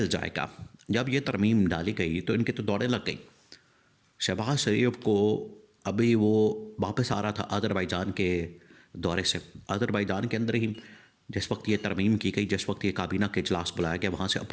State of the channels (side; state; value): both; identical; correlation 1.00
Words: جائے گا۔ جب یہ ترمیم ڈالی گئی تو ان کی تو دوڑیں لگ گئیں۔ شہباز شریف کو ابھی وہ واپس آ رہا تھا آذربائیجان کے دورے سے آذربائیجان کے اندر ہی جس وقت یہ ترمیم کی گئی، جس وقت یہ کابینہ کے اجلاس بلایا گیا، وہاں سے